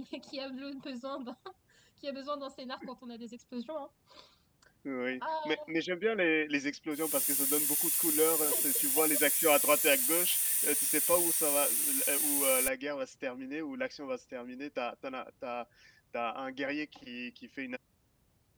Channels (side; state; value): both; identical; correlation 1.00